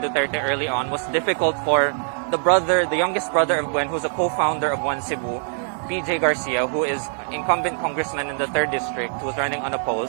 early on was difficult for the youngest brother of Gwen, who's a co-founder of One Cebu, PJ Garcia, who is incumbent congressman in the 3rd district, who's running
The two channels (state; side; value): silent; left; digital silence